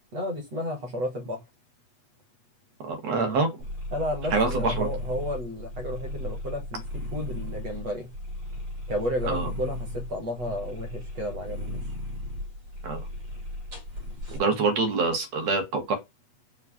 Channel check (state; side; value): late; left; 8.2 ms